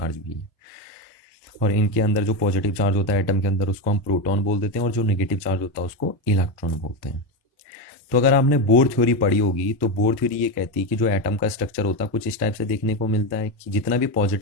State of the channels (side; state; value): both; normal; correlation 0.13